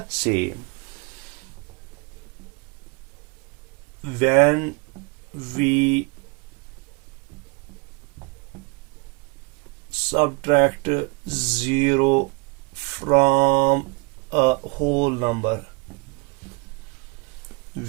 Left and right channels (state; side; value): quieter; left; 28.4 dB